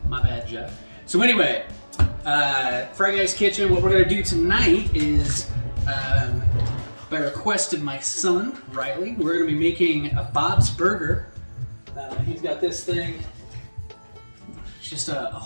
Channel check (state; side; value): inverted; both; correlation -1.00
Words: My bad, Jeff. So anyway, Freyguys kitchen, what we're gonna do tonight is, by request of my son, Riley, we're gonna be making a Bob's Burger. He's got this thing. Just a